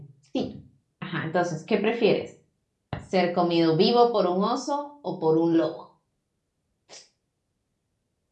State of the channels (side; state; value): both; identical; correlation 1.00